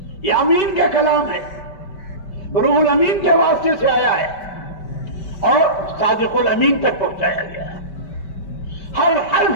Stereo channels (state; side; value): late; right; 5.1 ms